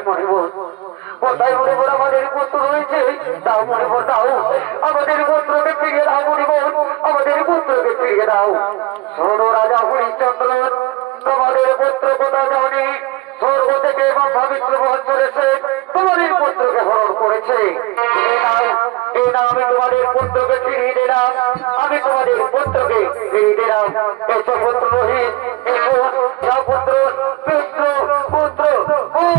মনিবর, কোথায় মনিবর আমাদের পুত্র রয়েছে? দাও মনিবর দাও, আমাদের পুত্রকে ফিরিয়ে দাও মনিবর, আমাদের পুত্রকে ফিরিয়ে দাও। শোনো রাজা হরিশ্চন্দ্র, তোমাদের পুত্র কোথাও যাওনি, স্বর্গ থেকে এবং পবিত্র বহন করেছে, তোমাদের পুত্রকে হরণ করেছে। এই না আমি তোমাদের পুত্রকে ফিরিয়ে দিলাম, আমি তোমাদের পুত্রকে ফিরিয়ে দিলাম। এসো পুত্র রোহিত, এসো পুত্র পুত্র পুত্র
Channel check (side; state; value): left; quieter; 22.0 dB